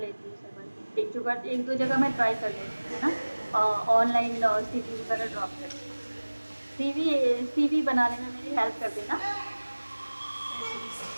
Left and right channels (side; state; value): both; inverted; correlation -1.00